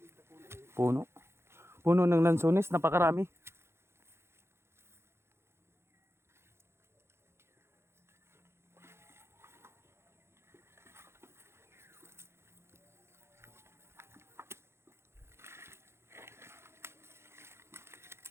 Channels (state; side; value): late; left; 0.12 ms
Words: Puno. Puno ng lansunis, napakarami.